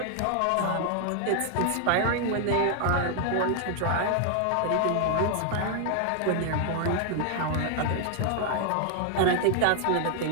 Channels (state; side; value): different; both; correlation 0.00